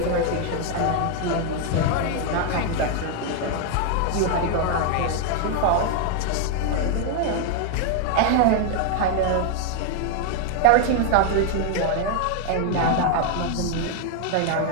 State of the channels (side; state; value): both; different; correlation 0.00